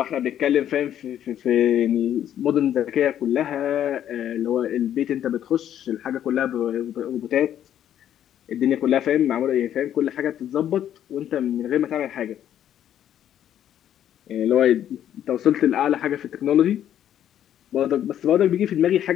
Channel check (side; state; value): right; quieter; 10.6 dB